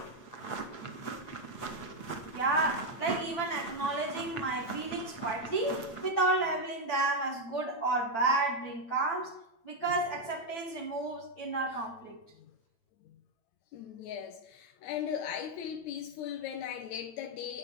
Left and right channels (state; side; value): late; right; 8.9 ms